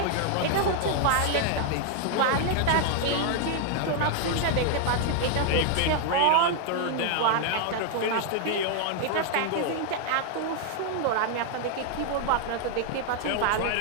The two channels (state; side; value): different; both; correlation 0.00